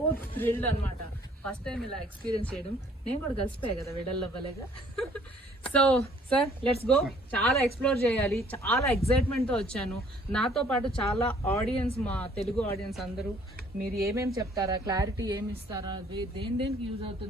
థ్రిల్డ్ అనమాట. ఫస్ట్ టైం ఇలా ఎక్స్పీరియన్స్ చేయడం. నేను కూడా కలిసిపోయా కదా విడల్ అవ్వలేగా. So sir let's go. చాలా ఎక్స్ప్లోర్ చేయాలి, చాలా ఎక్సైట్మెంట్ తో వచ్చాను. నాతో పాటు చాలా ఆడియన్స్, మా తెలుగు ఆడియన్స్ అందరూ మీరు ఏమేమి చెప్తారా, క్లారిటీ ఏమి ఇస్తారా, దేనికి యూజ్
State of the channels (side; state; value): both; normal; correlation 0.59